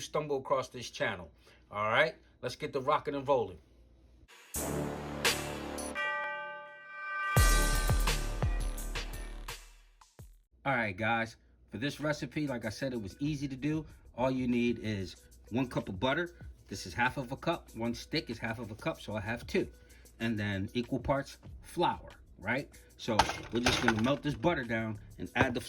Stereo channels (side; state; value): both; identical; correlation 1.00